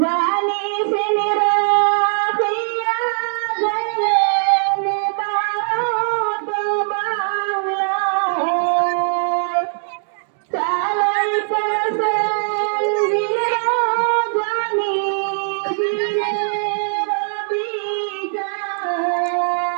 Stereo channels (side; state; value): left; silent; digital silence